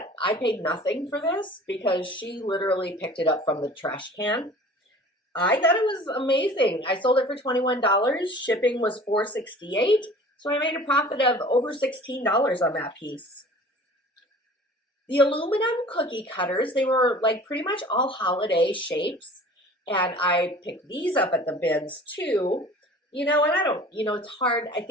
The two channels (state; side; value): normal; both; correlation 0.45